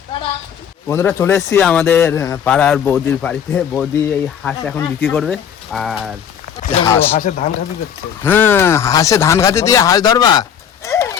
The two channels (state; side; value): quieter; right; 8.4 dB